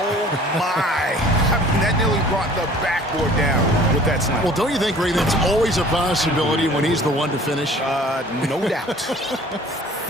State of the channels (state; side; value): normal; both; correlation 0.49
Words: my. I mean, that nearly brought the backboard down with that slam. Well, don't you think, Ray, that's always a possibility when he's the one to finish? No doubt.